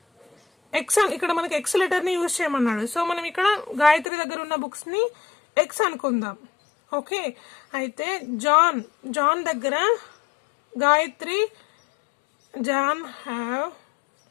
X, ఇక్కడ మనకి ఎక్స్ లెటర్ ని యూజ్ చేయమన్నాడు. సో మనం ఇక్కడ గాయత్రి దగ్గర ఉన్న బుక్స్ ని ఎక్స్ అనుకుందాం. ఓకే, అయితే జాన్ దగ్గర John have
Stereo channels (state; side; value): drops out; right; at 4.0 s